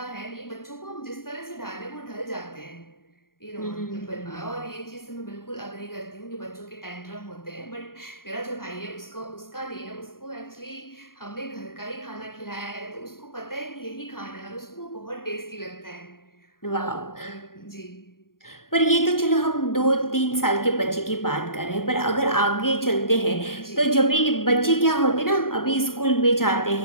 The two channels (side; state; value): right; late; 0.92 ms